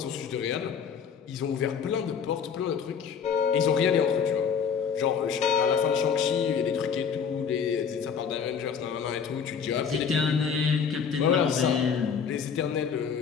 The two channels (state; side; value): quieter; right; 6.8 dB